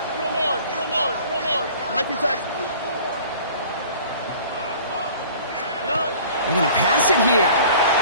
19 Texas. They're going to pass it here.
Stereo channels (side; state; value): both; inverted; correlation -0.47